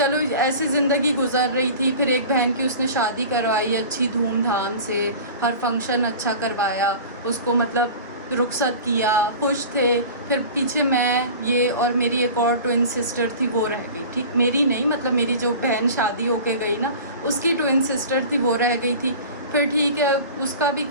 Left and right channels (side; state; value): both; inverted; correlation -0.38